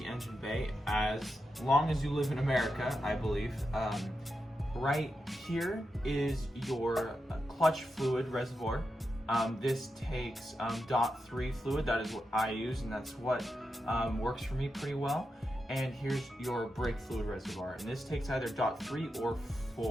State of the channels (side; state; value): both; normal; correlation 0.88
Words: engine bay, as long as you live in America, I believe. Right here is your clutch fluid reservoir. This takes .3 fluid. That is what I use, and that's what works for me pretty well. And here's your brake fluid reservoir, and this takes either .3 or